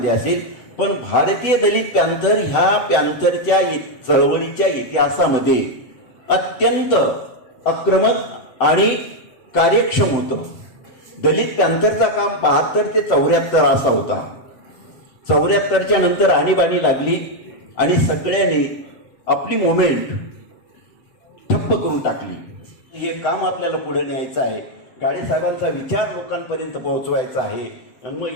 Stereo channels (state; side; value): late; right; 7.9 ms